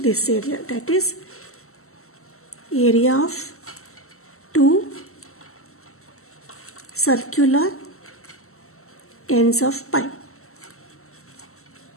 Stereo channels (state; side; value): late; right; 0.63 ms